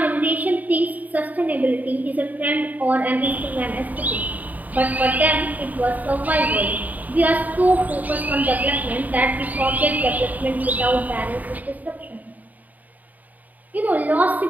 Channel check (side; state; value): left; late; 0.078 ms